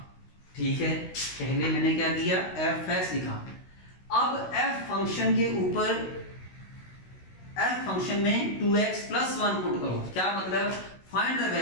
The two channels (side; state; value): right; late; 16 ms